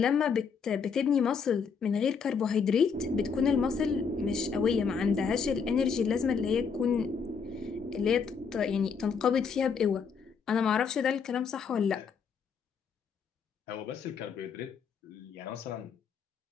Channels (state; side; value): quieter; right; 6.0 dB